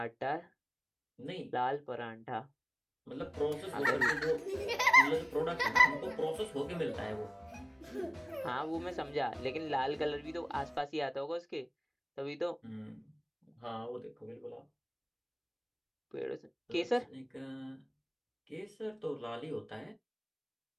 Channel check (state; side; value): identical; both; correlation 1.00